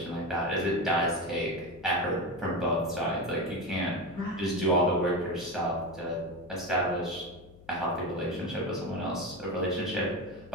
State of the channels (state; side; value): noise; left; hum, 22 dB below the sound